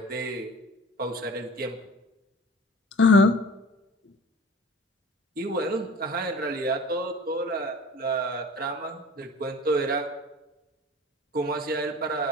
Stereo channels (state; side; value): normal; both; correlation 0.41